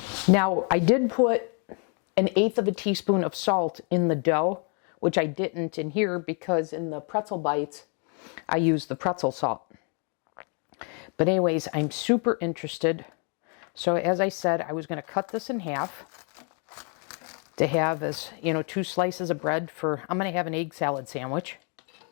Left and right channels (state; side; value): quieter; right; 38.9 dB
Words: Now, I did put 1/8 of a teaspoon of salt in the dough, which I didn't in here because in the pretzel bites, I used the pretzel salt. But anyways, I'm super interested. So as I said, I was going to cut this in half to have as, 2 slices of bread for, I'm going to have an egg salad sandwich.